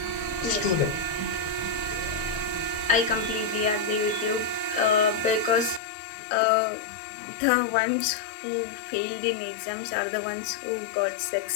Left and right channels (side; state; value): right; drops out; at 5.8 s